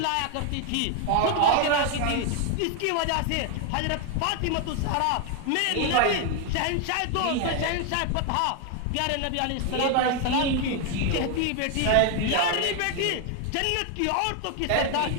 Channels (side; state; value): both; different; correlation 0.01